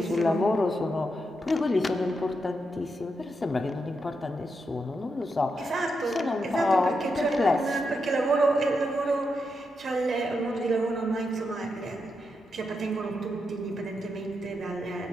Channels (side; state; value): both; normal; correlation 0.84